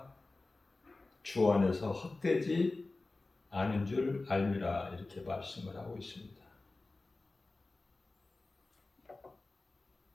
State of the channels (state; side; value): quieter; right; 3.3 dB